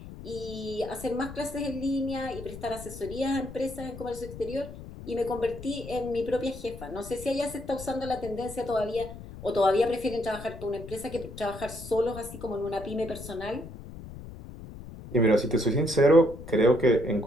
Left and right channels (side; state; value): left; noise; rumble, 13 dB below the sound